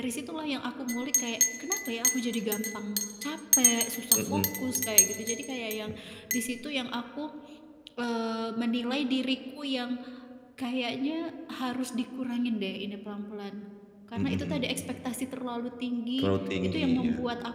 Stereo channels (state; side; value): identical; both; correlation 1.00